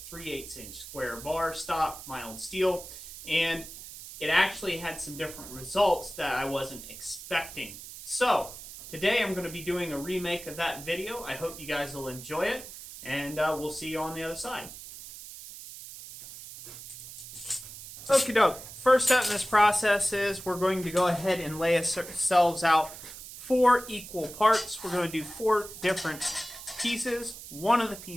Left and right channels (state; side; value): noise; right; hiss, 13 dB below the sound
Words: 3/8 inch square bar stock mild steel, and it actually had some different results that I wasn't expecting. So today I'm going to be doing a remake of that video. I hope you guys will enjoy it, and we'll see you on the other side. Okie doke. First step in this process is we're going to go ahead and lay ourselves out 4 equal parts. We're going to do 4 different pieces. One of the